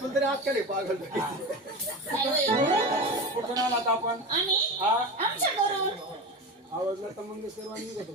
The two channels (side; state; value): both; normal; correlation 0.24